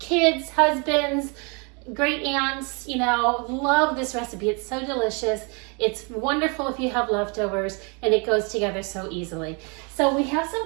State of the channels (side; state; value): left; quieter; 33.2 dB